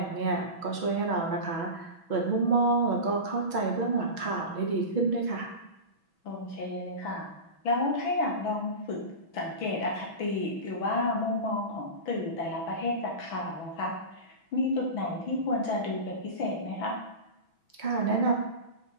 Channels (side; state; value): right; late; 6.1 ms